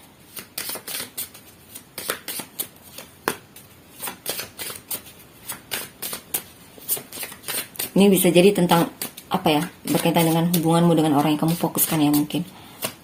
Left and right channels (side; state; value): both; identical; correlation 1.00